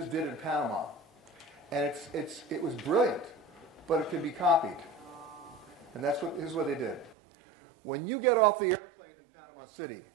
did in Panama. And it was brilliant, but it can be copied. And here's what they did. When you get off the airplane in Panama City,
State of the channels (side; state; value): left; drops out; at 7.2 s